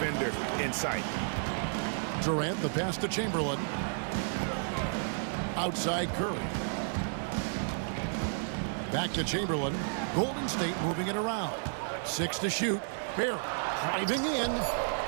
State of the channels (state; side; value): silent; left; 56 dB below the other